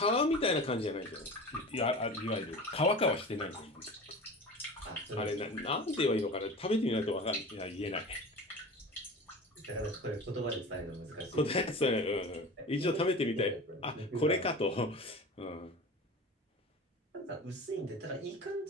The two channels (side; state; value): both; normal; correlation 0.34